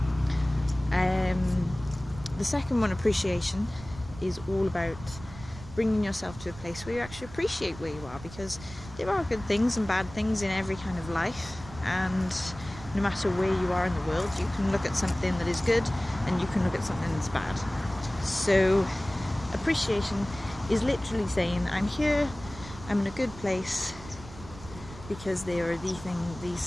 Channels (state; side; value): noise; right; rumble, 15 dB below the sound